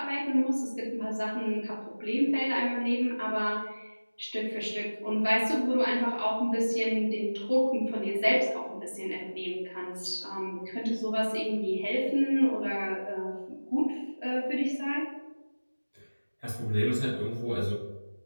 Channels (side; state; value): both; inverted; correlation -1.00